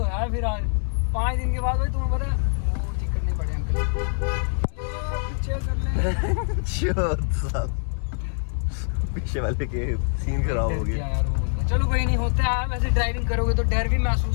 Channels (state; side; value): silent; right; digital silence